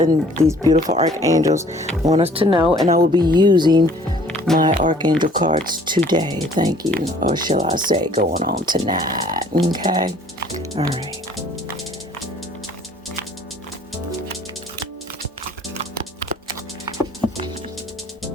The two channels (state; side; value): normal; both; correlation 0.55